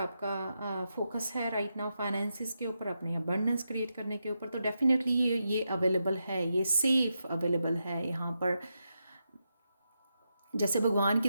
फोकस है राइट नाउ, फाइनेंसिस के ऊपर, अपने अबंडेंस क्रिएट करने के ऊपर। तो डेफिनेटली ये अवेलेबल है, ये सेफ अवेलेबल है यहाँ पर। जैसे भगवान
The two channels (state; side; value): inverted; both; correlation -0.86